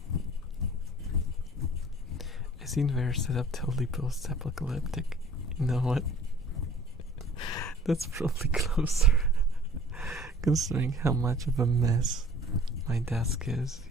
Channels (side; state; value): both; normal; correlation 0.50